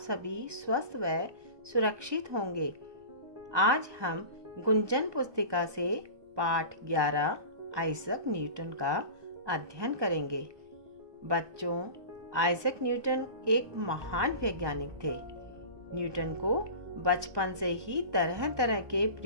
स्वस्थ व सुरक्षित होंगे। आज हम गुंजन पुस्तिका से पाठ 11 आइजैक न्यूटन का अध्ययन करेंगे। बच्चों, आइजैक न्यूटन एक महान वैज्ञानिक थे। न्यूटन को बचपन से ही तरह तरह के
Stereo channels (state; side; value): late; left; 1.2 ms